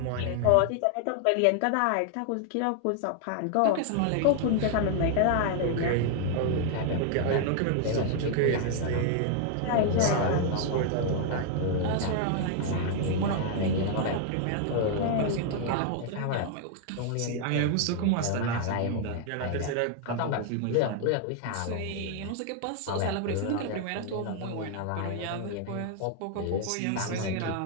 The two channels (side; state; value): both; different; correlation 0.00